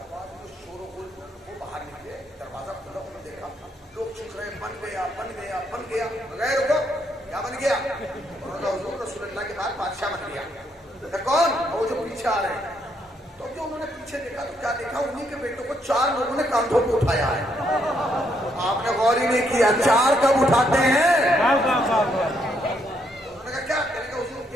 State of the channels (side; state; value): both; normal; correlation 0.74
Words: و غل وہ باہر نکلے, دروازہ کھلا, انہوں نے دیکھا لوگ چک رہے بن گیا بغیر ہوگا کیا بن گیا. انہوں نے حضور رسول اللہ کے بعد بادشاہ بن گیا. کون؟ وہ جو پیچھے آ رہے ہیں. تو جو انہوں نے پیچھے دیکھا تو کیا دیکھا, انہیں کے بیٹوں کو 4 لوگوں نے کاندھوں پہ اٹھایا ہے. آپ نے غور ہی نہیں کیا 4 کب اٹھاتے ہیں. انہوں نے کہا کیا؟ کہنے کا حضور